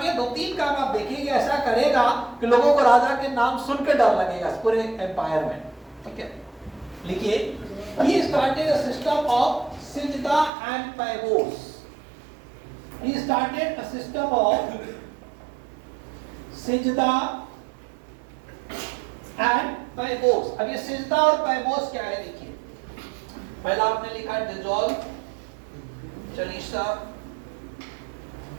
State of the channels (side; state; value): left; drops out; at 10.5 s